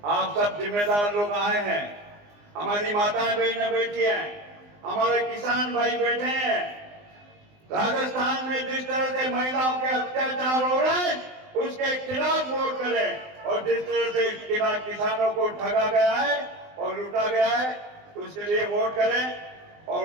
आप सब जिम्मेदार लोग आए हैं, हमारी माताएं बहनें बैठी हैं, हमारे किसान भाई बैठे हैं। राजस्थान में जिस तरह से महिलाओं के अत्याचार हो रहे हैं, उसके खिलाफ वोट करें, और जिस तरह से किसानों को ठगा गया है और लूटा गया है, उसके लिए वोट करें। और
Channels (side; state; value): left; late; 19 ms